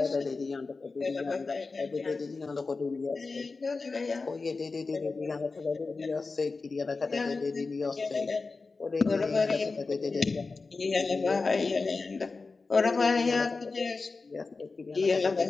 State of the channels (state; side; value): quieter; right; 4.1 dB